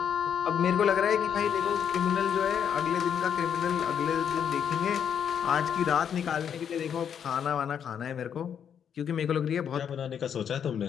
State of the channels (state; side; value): quieter; right; 8.2 dB